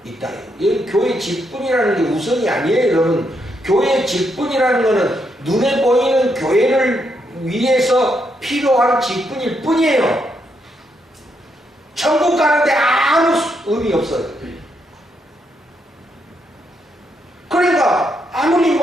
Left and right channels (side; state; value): both; normal; correlation 0.78